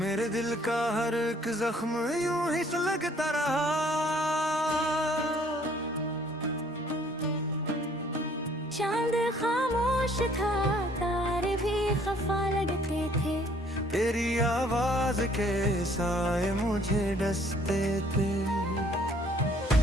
मेरे दिल का हर एक जख्म यूं ही सुलगता रहा। चांद खामोश था, तारे भी खफा लगते थे। तेरी आवाज के साए मुझे डसते थे।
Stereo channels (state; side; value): normal; both; correlation 0.60